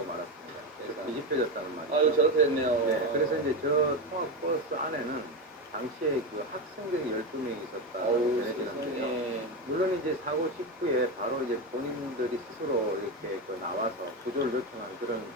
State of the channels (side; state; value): both; normal; correlation 0.14